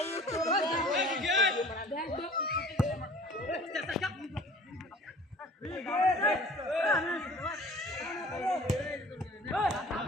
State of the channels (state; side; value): normal; both; correlation 0.47